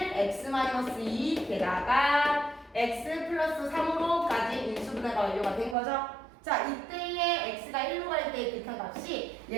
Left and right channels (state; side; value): drops out; left; at 5.8 s